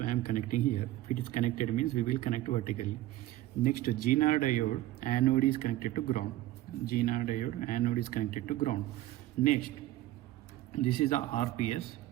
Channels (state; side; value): quieter; left; 15.6 dB